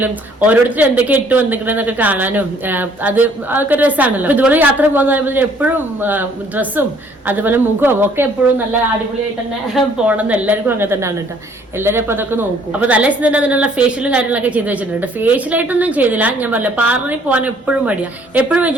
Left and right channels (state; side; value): normal; both; correlation 0.61